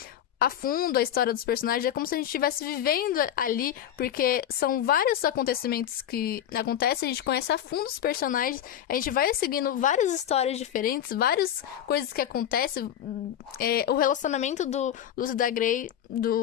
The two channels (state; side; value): quieter; right; 10.4 dB